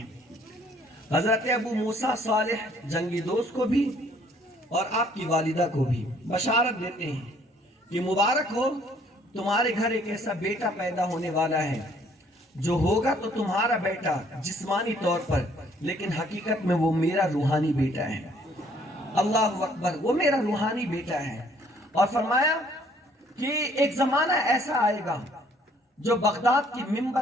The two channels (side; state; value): both; normal; correlation 0.61